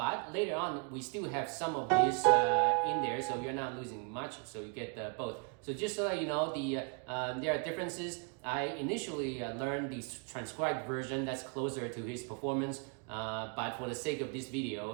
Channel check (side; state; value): left; quieter; 36.9 dB